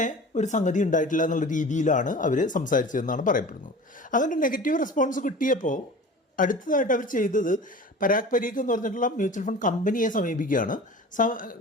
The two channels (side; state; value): both; normal; correlation 0.38